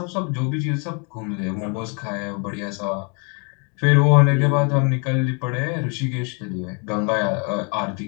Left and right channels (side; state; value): right; quieter; 35.6 dB